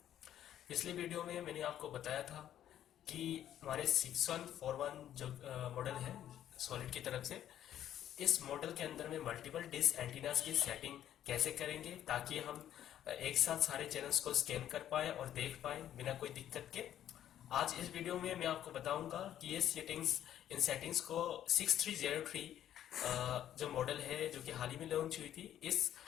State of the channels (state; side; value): quieter; right; 11.2 dB